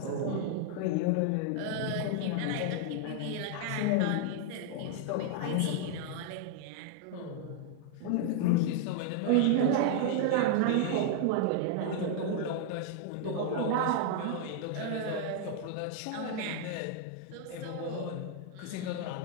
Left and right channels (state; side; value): different; both; correlation 0.00